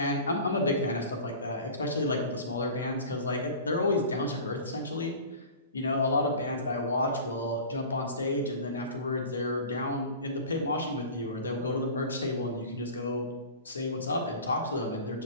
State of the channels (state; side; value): inverted; both; correlation -0.38